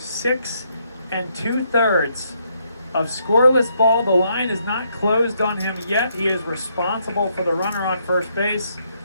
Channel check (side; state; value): both; inverted; correlation -0.74